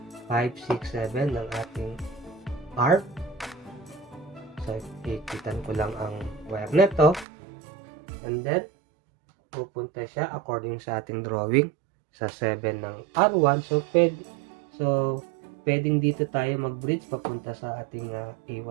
5, 6, 7 ng ating R. So, ipitan ko lang ang wire nito. And then, pupunta siya according sa ating drawing sa 7 ng R1. So, pwedeng dito tayo mag-bridge papunta sa ating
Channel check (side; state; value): left; drops out; at 7.2 s